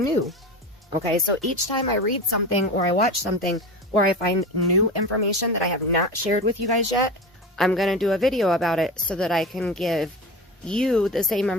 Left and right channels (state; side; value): normal; both; correlation 0.28